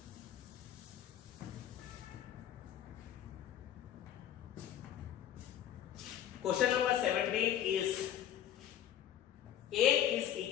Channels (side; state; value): right; quieter; 10.8 dB